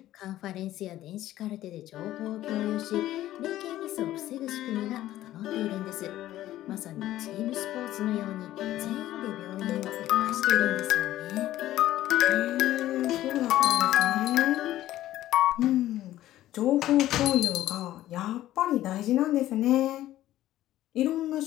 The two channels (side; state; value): right; quieter; 14.2 dB